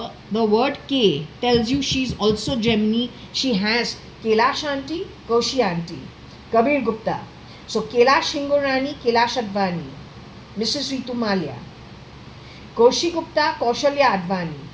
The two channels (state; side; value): identical; both; correlation 1.00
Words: the word K tells you she's also Gemini. She has Kailash auntie, Koshi auntie, Kabir Gupta. So, Kailash Hingorani, Kailash.ADVANI, Mrs. Ritu Malia, Koshi Gupta, Kaushalya.ADVANI,